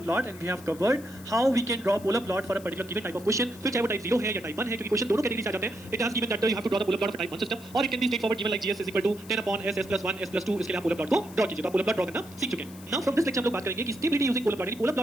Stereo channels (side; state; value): left; noise; hiss, 20 dB below the sound